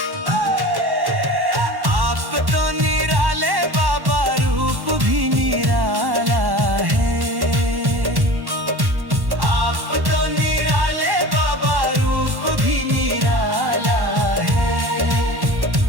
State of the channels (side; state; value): left; late; 1.1 ms